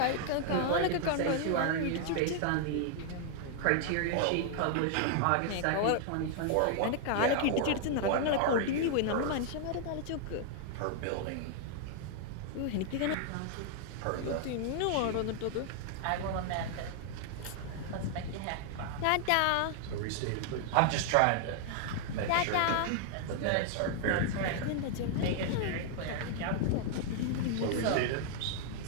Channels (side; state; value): both; different; correlation 0.00